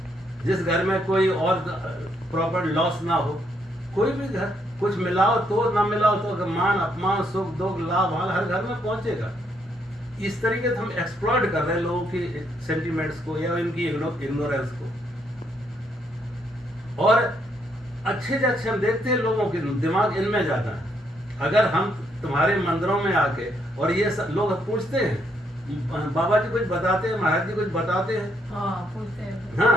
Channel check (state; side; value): normal; both; correlation 0.74